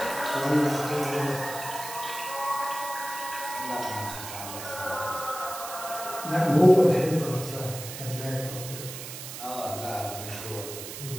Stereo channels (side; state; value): right; noise; hiss, 9 dB below the sound